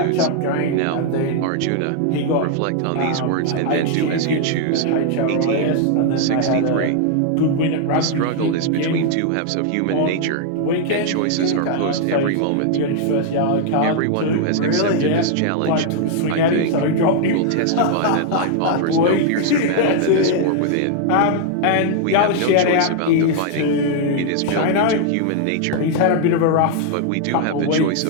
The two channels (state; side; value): different; both; correlation 0.00